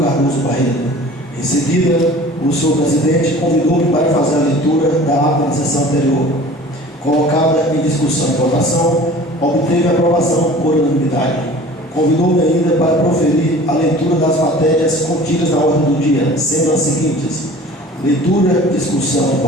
Cardoso Barreto. Em seguida, o senhor presidente convidou-me para fazer a leitura da ata da sessão anterior. Colocada em discussão e votação, obteve aprovação por unanimidade. Convidou-me ainda para proferir a leitura das matérias contidas na ordem do dia, sendo as seguintes: leitura, discussão e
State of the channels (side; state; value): both; normal; correlation 0.44